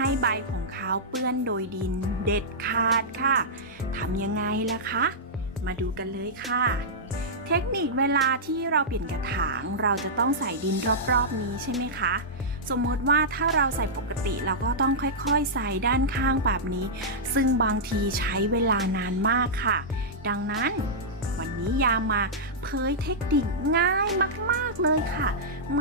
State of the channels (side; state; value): both; normal; correlation -0.11